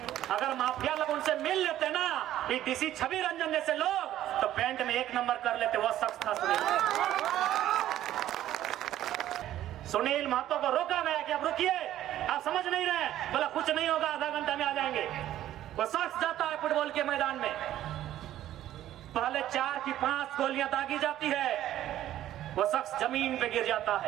अगर माफिया लोग उनसे मिल लेते ना, ये डीसी छवि रंजन जैसे लोग, तो पेंट में 1 नंबर कर लेते। वो शख्स था सुनील महतो को रोका गया कि अब रुकिए, आप समझ नहीं रहे, बोला कुछ नहीं होगा, आधा घंटा में आ जाएंगे। वो शख्स जाता है फुटबॉल के मैदान में, पहले 4 की 5 गोलियां दागी जाती है, वो शख्स जमीन पे गिर जाता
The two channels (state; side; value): quieter; left; 12.8 dB